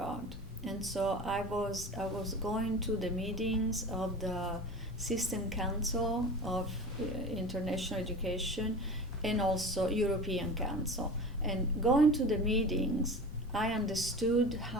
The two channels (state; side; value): normal; both; correlation 0.34